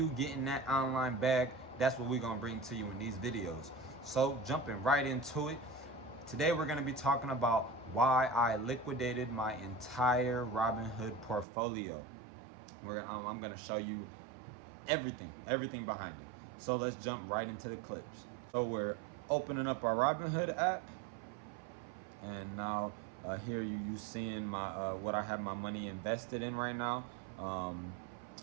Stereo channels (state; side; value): drops out; left; at 11.5 s